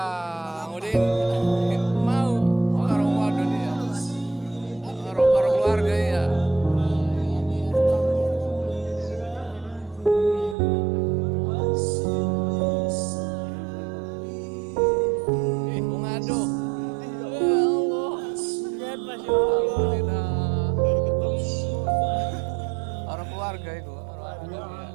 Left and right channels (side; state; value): left; drops out; at 10.6 s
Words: Udin mau orang waduh dia, orang keluarga ya. Mengadu, ya Allah, Alhamdulillah, orang keluarga itu, orang waduh dia.